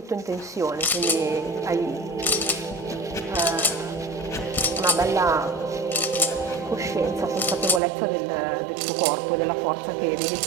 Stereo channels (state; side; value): drops out; left; at 7.8 s